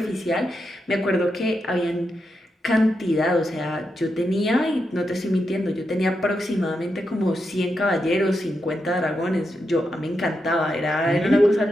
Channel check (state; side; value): normal; both; correlation 0.85